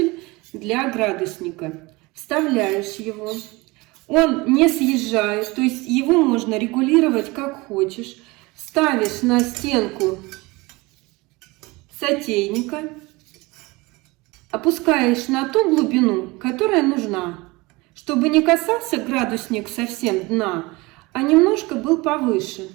для градусника. Вставляешь его. Он не съезжает, то есть его можно регулировать как хочешь. Ставишь на стенку сотейника. Опускаешь на ту глубину, которая нужна, чтобы не касался градусник совсем дна, а немножко был повыше.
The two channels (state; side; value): quieter; left; 23.3 dB